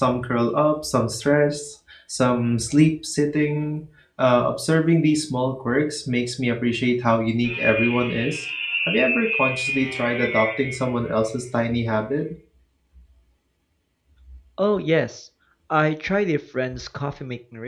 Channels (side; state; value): both; identical; correlation 1.00